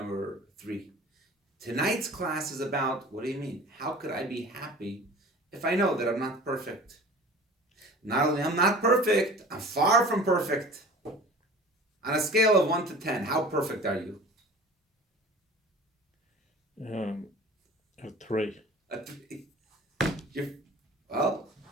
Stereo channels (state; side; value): normal; both; correlation 0.42